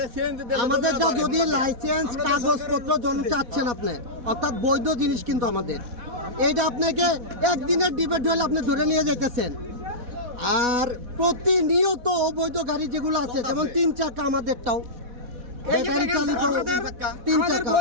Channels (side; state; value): left; late; 4.1 ms